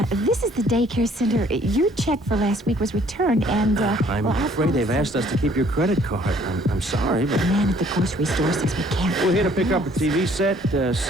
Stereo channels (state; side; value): normal; both; correlation 0.60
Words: This is the daycare center. Your check for last week was returned, and, I'm afraid they've asked us to keep your credit card. I'm sorry, but... The man at the grocery store says we can't. We're here to pick up a TV set,